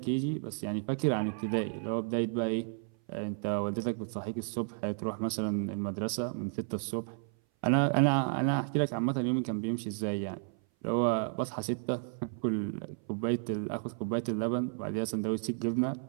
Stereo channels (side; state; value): left; silent; 56 dB below the other